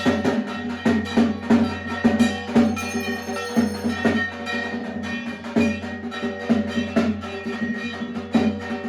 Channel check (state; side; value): identical; both; correlation 1.00